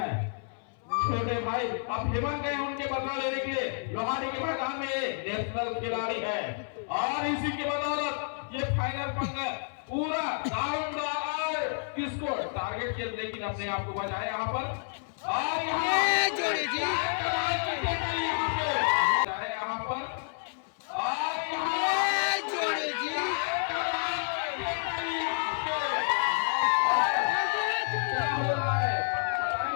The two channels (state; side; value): silent; right; 58 dB below the other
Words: छोटे भाई अब हेमंत गए उनके बदला लेने के लिए लोहाड़ी के मैदान में नेशनल खिलाड़ी है और इसी के बदौलत ये फाइनल पंगा पूरा दारोमदार किसको टारगेट किया, लेकिन अपने आप को बचाया यहाँ पर और यहाँ पर